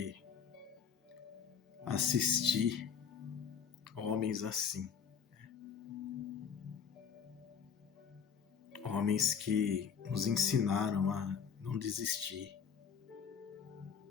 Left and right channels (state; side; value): quieter; right; 7.0 dB